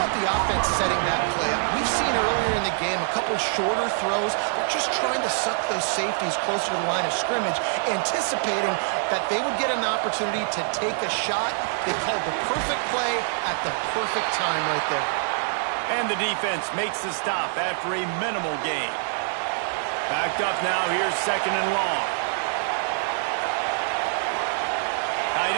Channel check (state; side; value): silent; left; digital silence